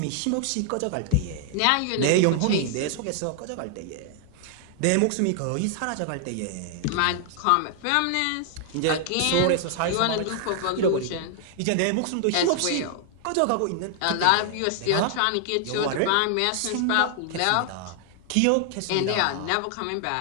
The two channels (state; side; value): different; both; correlation 0.00